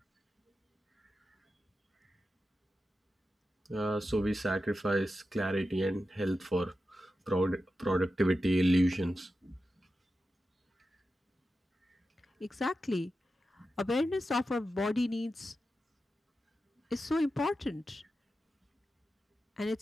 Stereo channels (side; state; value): both; normal; correlation 0.91